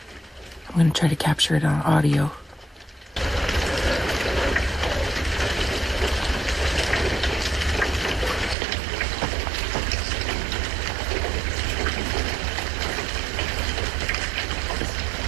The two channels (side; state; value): left; drops out; at 8.6 s